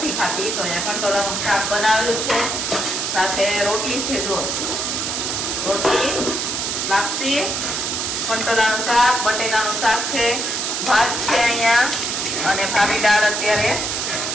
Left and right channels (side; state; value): right; noise; hiss, 1 dB below the sound